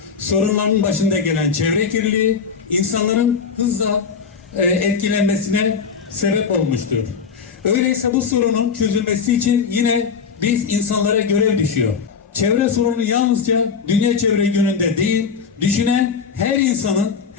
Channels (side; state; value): right; quieter; 6.0 dB